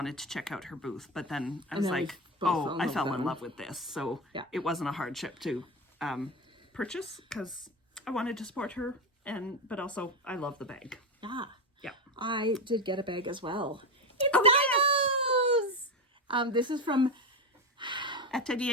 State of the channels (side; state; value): both; normal; correlation 0.17